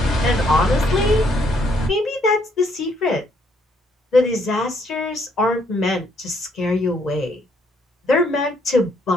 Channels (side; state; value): both; normal; correlation 0.70